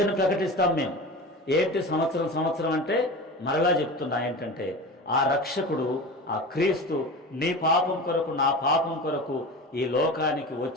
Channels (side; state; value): both; normal; correlation 0.31